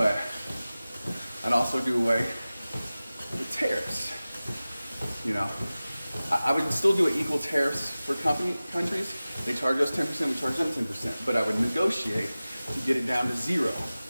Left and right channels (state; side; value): inverted; both; correlation -0.97